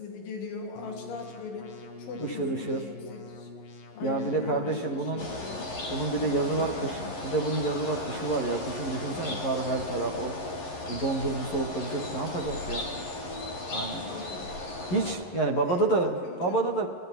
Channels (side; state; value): right; late; 11 ms